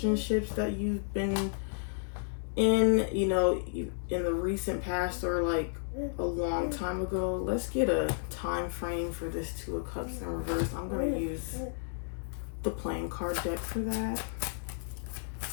that you've been in, you know, in the recent past or like a long time ago. Let's get a time frame for this Two of Cups in reverse. I'm going to use the playing card deck for that.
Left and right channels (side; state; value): right; silent; digital silence